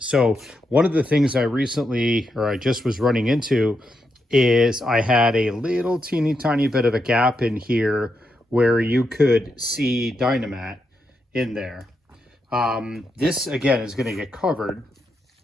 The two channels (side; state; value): both; normal; correlation 0.83